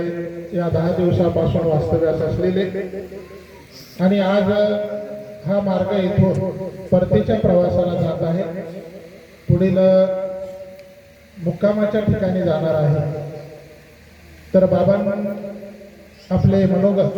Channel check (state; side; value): identical; both; correlation 1.00